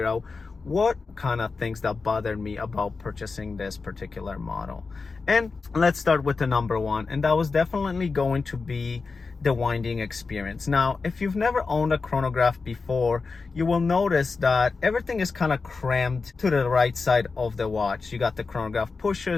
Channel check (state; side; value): quieter; right; 4.4 dB